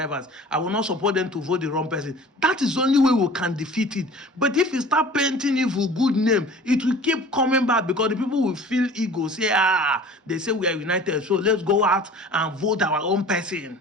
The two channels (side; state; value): both; normal; correlation 0.44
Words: I will not support them to vote the wrong person. That is the only way we can defeat it. But if you start painting evil good name, it will keep coming back because the people will feel ego. Say, they say we are united, so let's go out and vote our own person.